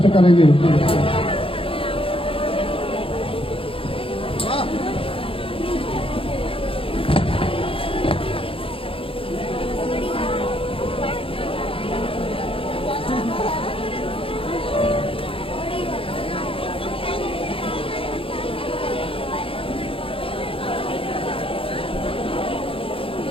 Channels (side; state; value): right; late; 0.26 ms